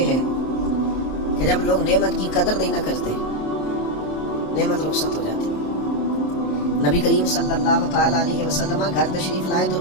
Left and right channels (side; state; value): right; late; 27 ms